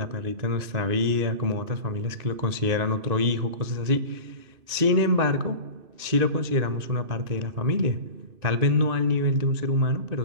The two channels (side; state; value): left; late; 2.6 ms